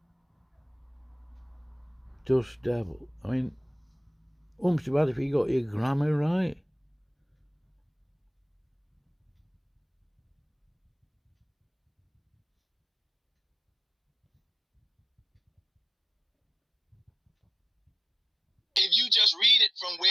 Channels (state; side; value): identical; both; correlation 1.00